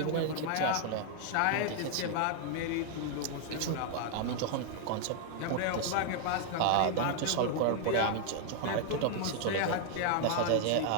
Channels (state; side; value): different; both; correlation 0.00